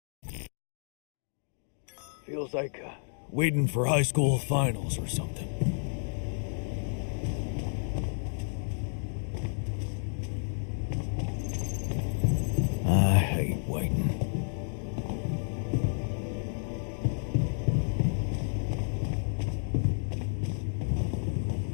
Feels like waiting for high school finals or something. I hate waiting.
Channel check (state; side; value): silent; right; digital silence